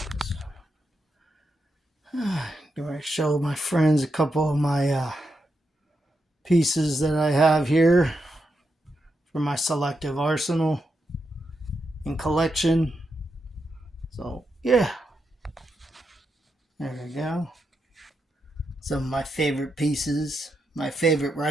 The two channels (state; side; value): normal; both; correlation 0.84